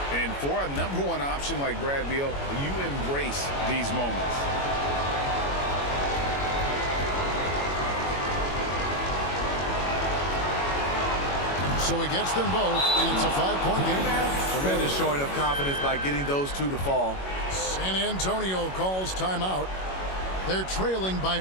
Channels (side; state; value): right; late; 21 ms